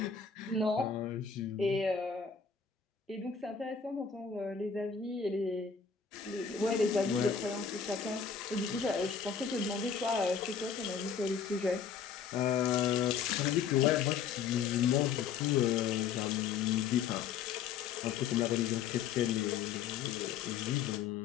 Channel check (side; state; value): right; quieter; 6.7 dB